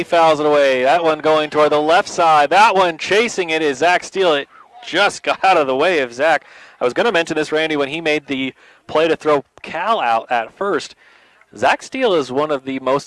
fouls it away. That one going toward the left side. That one chasing it is Zach Steele. It just got out of the way of Zach. I was going to mention this, Randy, when he made the play to throw Cal out at first. Zach Steele is one of the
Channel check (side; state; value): both; identical; correlation 1.00